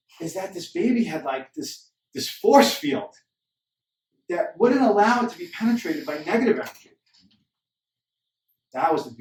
is that this baby had like this force field that wouldn't allow it to be penetrated by negative energy. That was the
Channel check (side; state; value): both; identical; correlation 1.00